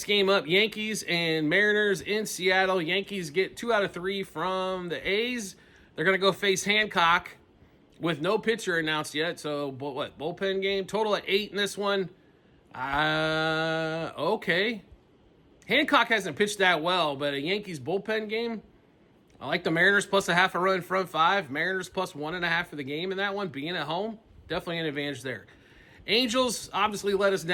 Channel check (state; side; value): identical; both; correlation 1.00